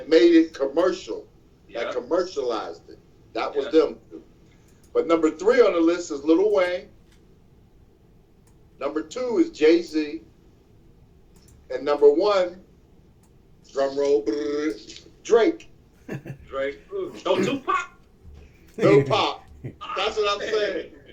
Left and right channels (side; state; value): both; identical; correlation 1.00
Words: made it commercial. Yeah. That commercialized it. That was them. But number 3 on the list is Lil Wayne. Number 2 is Jay-Z. And number 1, drum roll, Drake. Drake. No Tupac. No Pop. That's what I'm saying.